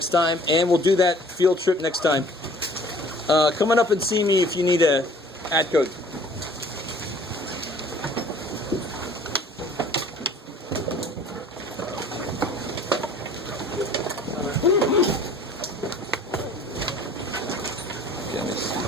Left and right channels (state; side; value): normal; both; correlation 0.51